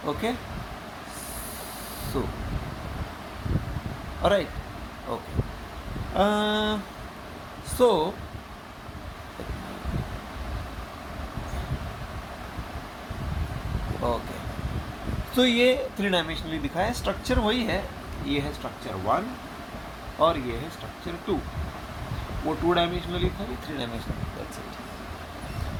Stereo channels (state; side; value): identical; both; correlation 1.00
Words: Okay, so alright, okay, so okay, तो ये 3 डायमेंशनली दिखा है. स्ट्रक्चर वही है, ये है स्ट्रक्चर 1 और ये है स्ट्रक्चर 2. वो 2 डायमेंशनली था, ये 3 dimensionally, that's it,